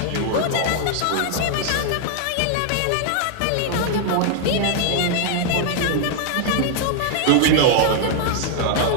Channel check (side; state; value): both; different; correlation 0.00